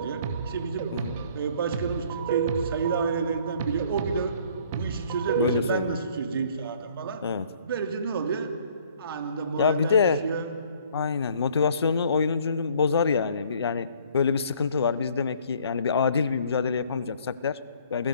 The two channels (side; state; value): both; inverted; correlation -0.58